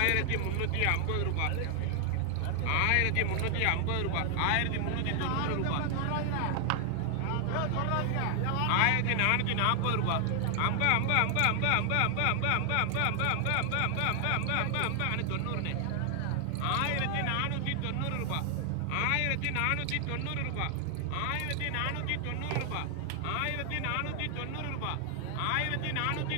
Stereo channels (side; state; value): both; different; correlation 0.00